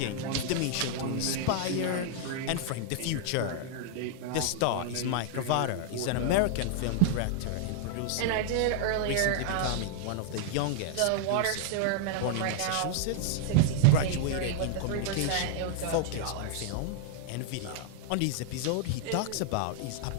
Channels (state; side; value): different; both; correlation 0.00